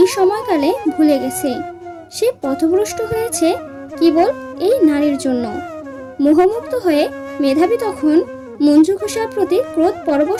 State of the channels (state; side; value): identical; both; correlation 1.00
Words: সময়কালে ভুলে গেছে। সে পথভ্রষ্ট হয়েছে কেবল এই নারীর জন্য। মোহমুক্ত হয়ে মেধাবী তখন মঞ্জুঘোষার প্রতি ক্রোধ